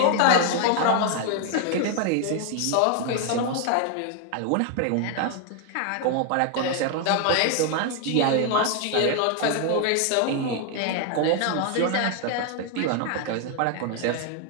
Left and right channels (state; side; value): different; both; correlation 0.00